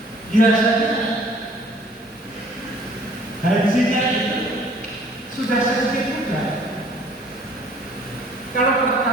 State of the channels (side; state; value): both; normal; correlation 0.55